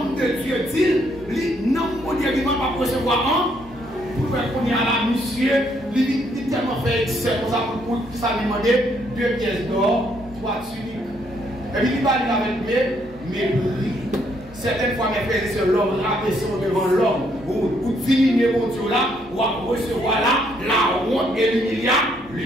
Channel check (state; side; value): normal; both; correlation 0.71